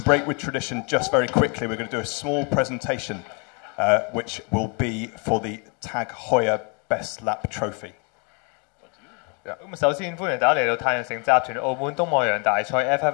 break with tradition, just very quickly, we're going to do a small presentation which will be for the Tag Heuer Best Lap Trophy. 咁首先歡迎大家嚟到太陽城集團澳門東望洋大賽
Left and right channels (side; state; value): right; quieter; 34.2 dB